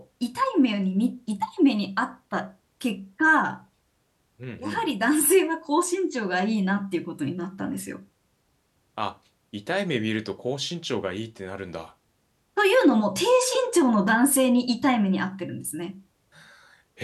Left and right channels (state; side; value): identical; both; correlation 1.00